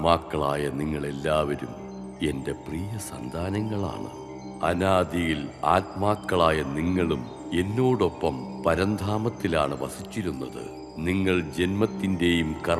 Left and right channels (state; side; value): identical; both; correlation 1.00